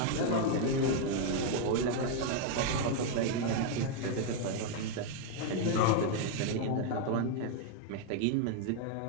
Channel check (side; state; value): both; different; correlation 0.00